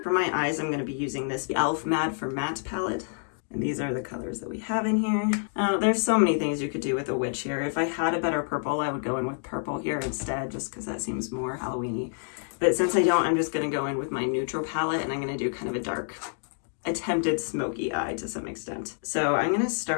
For my eyes, I'm going to be using this e.l.f. Matte for Matte palette. And these are the colors that we have in here. There's so many things you could do with a witch here. If I had a better purple, I would go in with purple here instead, just because that seems more Halloween-y. But since I don't, I'm just going to go in with my neutral palette, and I'm going to do kind of a dark, attempted smoky eye to some extent. So I'm going to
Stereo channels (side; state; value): right; silent; digital silence